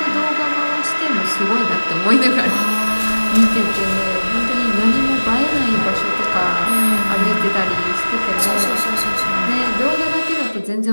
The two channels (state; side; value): inverted; both; correlation -1.00